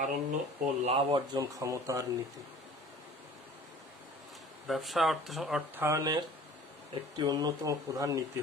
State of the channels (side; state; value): both; normal; correlation 0.46